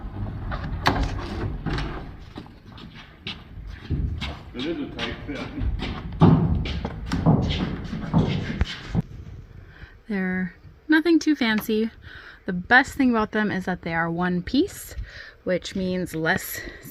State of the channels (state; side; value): identical; both; correlation 1.00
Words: It is a tight fit. They're nothing too fancy. The best thing about them is that they are one piece, which means less